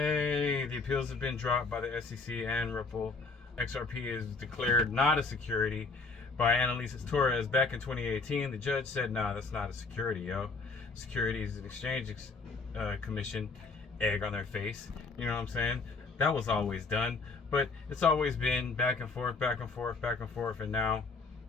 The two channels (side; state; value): right; quieter; 4.1 dB